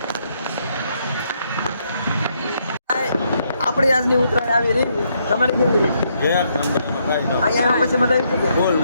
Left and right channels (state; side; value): inverted; both; correlation -0.74